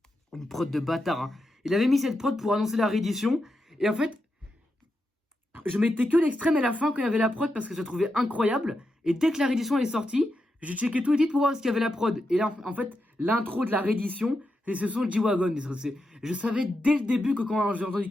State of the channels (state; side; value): normal; both; correlation 0.86